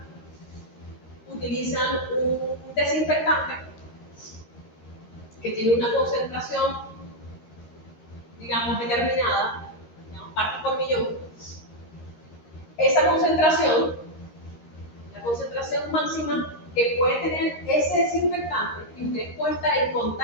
utilizan un desinfectante que tiene una concentración, digamos, determinada, digamos, parte por millón. Esa concentración, la concentración máxima que puede tener ese desinfectante, y ustedes pueden estar en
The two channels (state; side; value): late; right; 13 ms